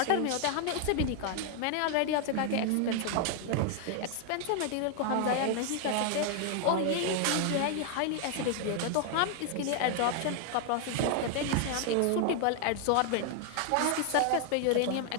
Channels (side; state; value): both; different; correlation 0.00